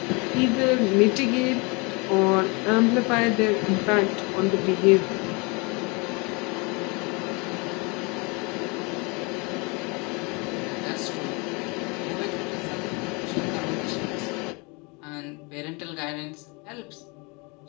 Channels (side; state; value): right; quieter; 29.4 dB